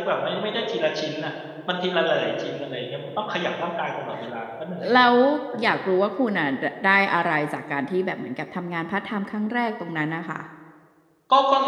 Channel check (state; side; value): identical; both; correlation 1.00